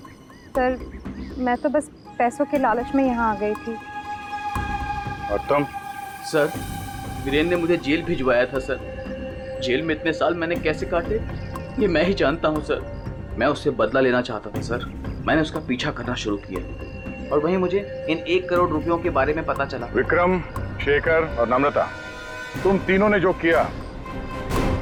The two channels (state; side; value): identical; both; correlation 1.00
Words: सर, मैं तो बस पैसों के लालच में यहाँ आ गई थी। और तुम? सर, वीरेन ने मुझे जेल भिजवाया था सर। जेल में इतने साल मैंने कैसे काटे ये मैं ही जानता हूँ सर। मैं उससे बदला लेना चाहता था सर। मैंने उसका पीछा करना शुरू किया और वहीं मुझे इन 1 करोड़ रुपयों के बारे में पता चला। विक्रम, शेखर और नम्रता, तुम तीनों ने जो किया